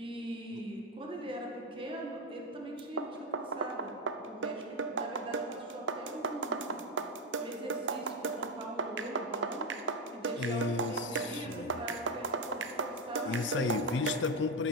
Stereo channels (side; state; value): both; normal; correlation 0.10